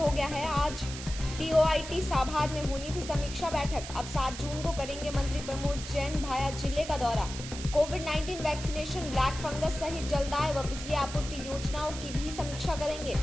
गया है। आज DOIT साभार में होनी थी समीक्षा बैठक। अब 7 जून को करेंगे मंत्री प्रमोद जैन भाया जिले का दौरा। कोविड-19 वैक्सीनेशन, ब्लैक फंगस सहित जलदाय व बिजली आपूर्ति योजनाओं की भी समीक्षा करेंगे।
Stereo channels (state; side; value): noise; right; hiss, 10 dB below the sound